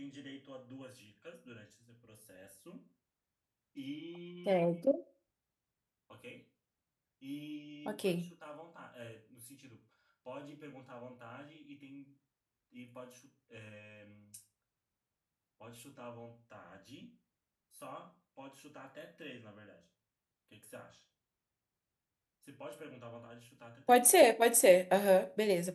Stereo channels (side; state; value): both; identical; correlation 1.00